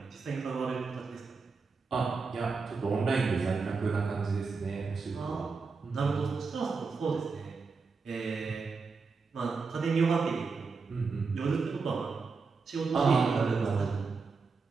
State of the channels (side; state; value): left; quieter; 4.6 dB